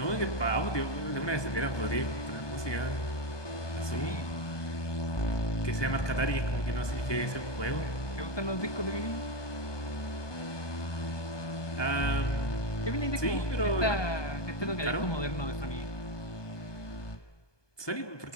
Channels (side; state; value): right; late; 1.2 ms